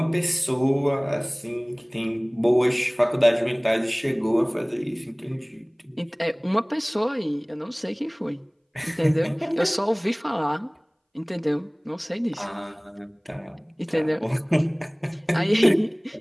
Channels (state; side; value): identical; both; correlation 1.00